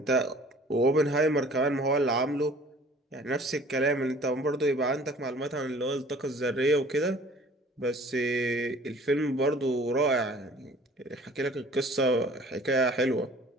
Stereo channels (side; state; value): both; normal; correlation 0.50